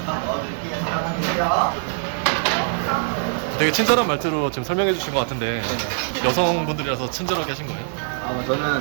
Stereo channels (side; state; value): left; silent; digital silence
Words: 넣어드릴게요. 잠깐만 계세요. 되게 친절한 말투로 지금 설명해 주신 것 같은데 여성분들이라서 친절하게 하신 거예요?